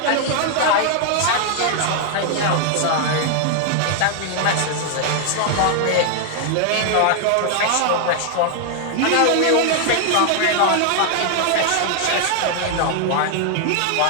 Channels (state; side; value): different; both; correlation 0.00